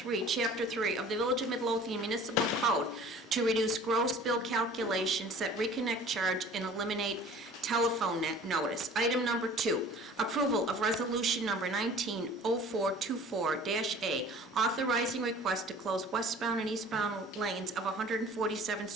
Chapter 3 of the Village of Midlothian Municipal Code to reduce gross bill calculation, set reconnect charge, and eliminate telephone notice. Item number 2, approval of resolution number 190424-A, authorizing request to close westbound and eastbound lanes of 147th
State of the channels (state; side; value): normal; both; correlation 0.47